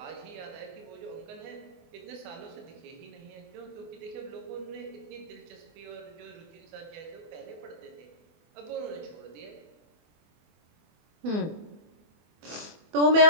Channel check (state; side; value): late; left; 24 ms